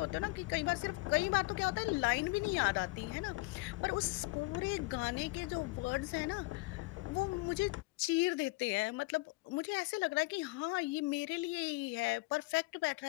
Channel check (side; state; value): right; quieter; 23.1 dB